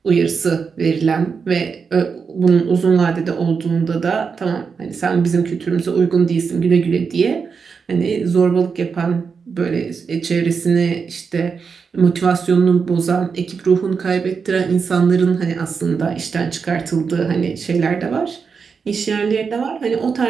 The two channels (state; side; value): quieter; left; 5.6 dB